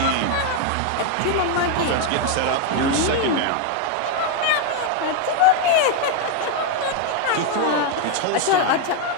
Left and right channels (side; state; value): both; different; correlation 0.01